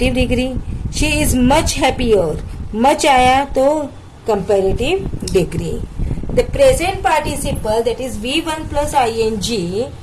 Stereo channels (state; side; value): identical; both; correlation 1.00